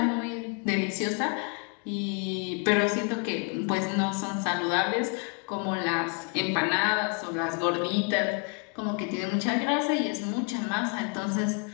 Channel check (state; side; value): quieter; right; 36.1 dB